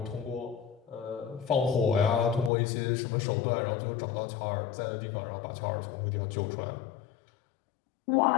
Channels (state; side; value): drops out; right; at 2.5 s